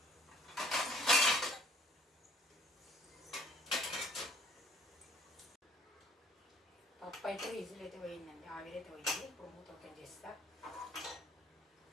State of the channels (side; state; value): both; normal; correlation 0.58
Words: పప్పు అయితే విజిల్ అయితే పోయిందండి, ఆవిరైతే పోయింది. ఇప్పుడు మూత ఓపెన్ చేస్తా.